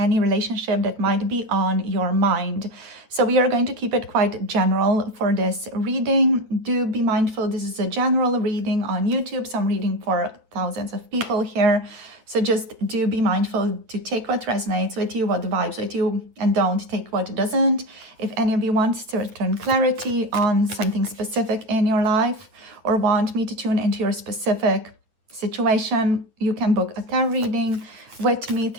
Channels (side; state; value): left; late; 9.0 ms